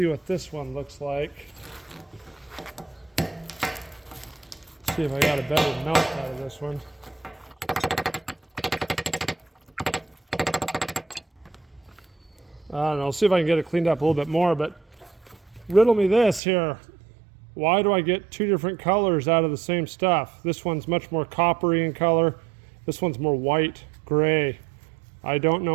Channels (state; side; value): drops out; left; at 16.4 s